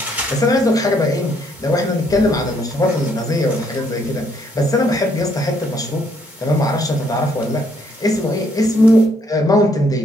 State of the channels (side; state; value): both; normal; correlation 0.69